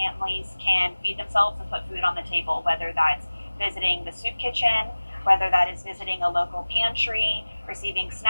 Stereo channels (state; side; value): inverted; both; correlation -1.00